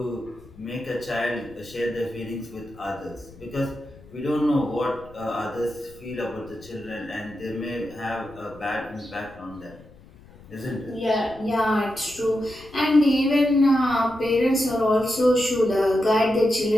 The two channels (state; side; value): noise; left; rumble, 22 dB below the sound